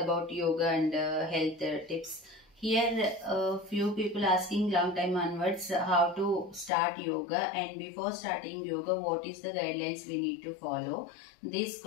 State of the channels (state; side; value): drops out; right; at 6.7 s